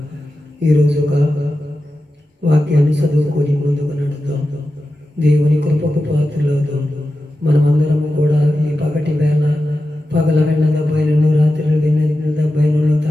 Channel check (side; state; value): both; normal; correlation 0.92